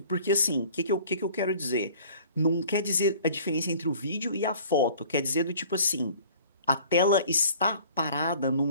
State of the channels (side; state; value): both; inverted; correlation -0.50